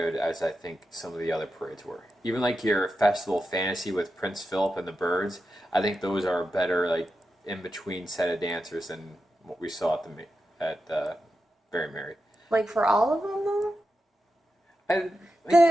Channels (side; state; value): both; normal; correlation 0.89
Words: as I think some of the other parades were. Even like your Festival Fantasy with Prince Philip and the birds, I think those are better like in between set of dancers than what we saw at the Very Merry. Like for all of them though.